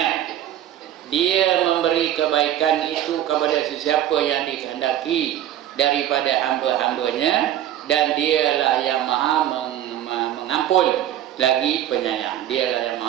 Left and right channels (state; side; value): quieter; left; 11.9 dB